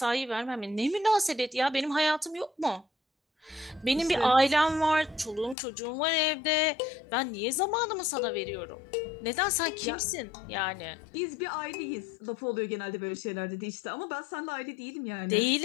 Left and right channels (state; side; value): drops out; right; at 5.6 s